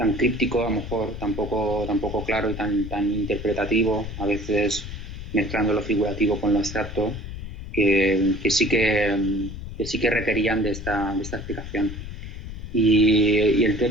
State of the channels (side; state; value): left; noise; rumble, 9 dB below the sound